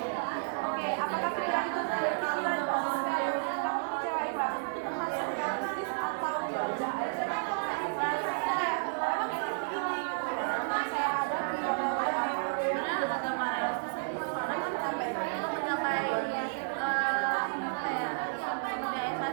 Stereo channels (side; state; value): left; silent; digital silence